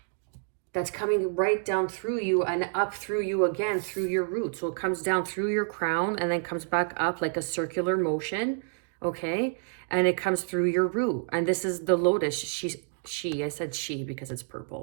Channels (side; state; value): left; silent; 59 dB below the other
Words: that's coming right down through you and up through you again through your root. So it comes down through your crown and then comes back up like a circular motion, okay? And it comes through your root. And this is the lotus. I said she because it's